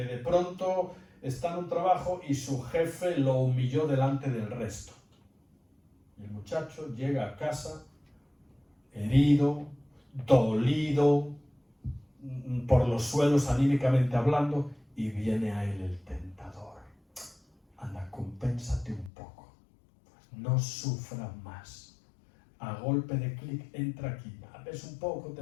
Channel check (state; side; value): drops out; right; at 19.1 s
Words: de pronto está en un trabajo y su jefe lo humilló delante del resto. Y el muchacho llega a casa herido, dolido, por los suelos anímicamente hablando, y viene a él el tentador. Anda, compénsate un poco, no sufra más. A golpe de clic entra aquí, ves un poco, te